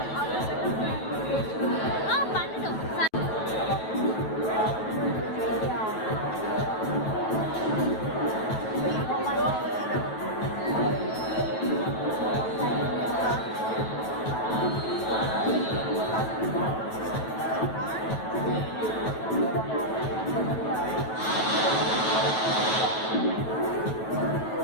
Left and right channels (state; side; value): late; right; 9.3 ms